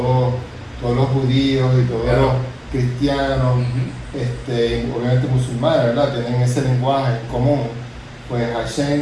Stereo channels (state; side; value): identical; both; correlation 1.00